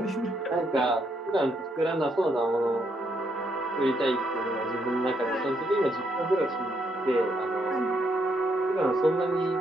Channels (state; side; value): normal; both; correlation 0.75